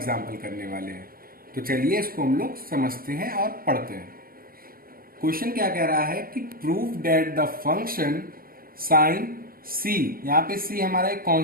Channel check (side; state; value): left; late; 0.42 ms